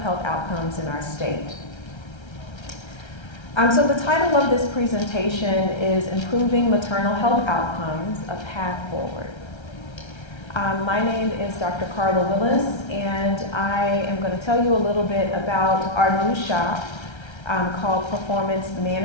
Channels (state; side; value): late; right; 1.3 ms